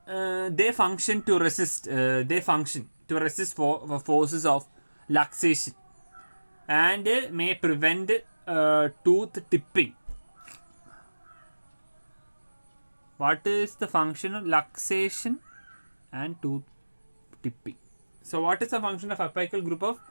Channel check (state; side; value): inverted; both; correlation -1.00